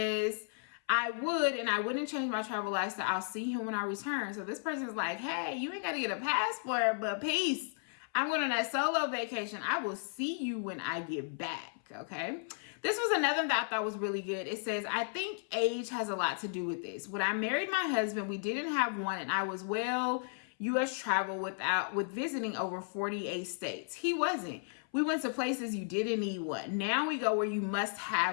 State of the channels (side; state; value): right; silent; 55 dB below the other